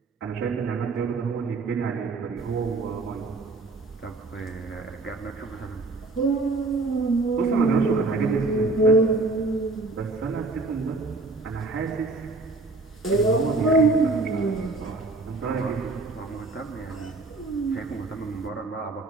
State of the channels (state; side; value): quieter; left; 3.4 dB